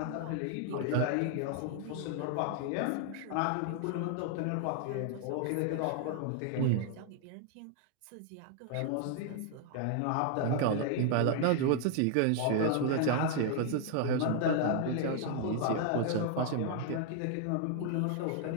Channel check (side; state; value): both; different; correlation 0.00